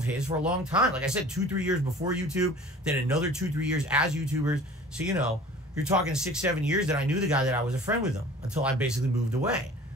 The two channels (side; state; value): both; normal; correlation 0.45